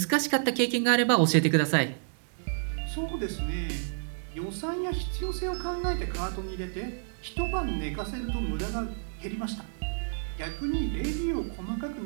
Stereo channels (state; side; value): silent; left; 58 dB below the other